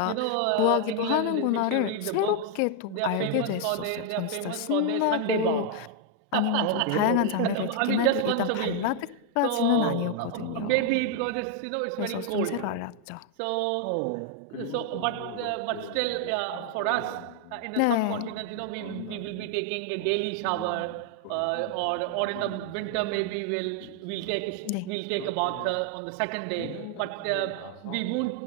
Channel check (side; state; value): both; different; correlation 0.00